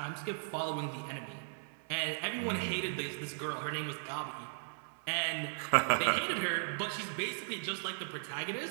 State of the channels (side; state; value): left; silent; 53 dB below the other